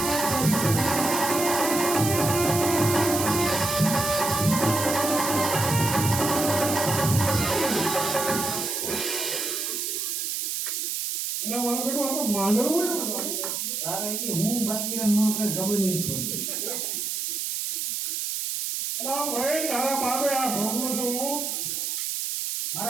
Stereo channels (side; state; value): right; noise; hiss, 2 dB below the sound